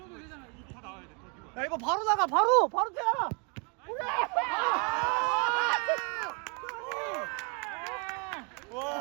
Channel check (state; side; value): quieter; left; 34.8 dB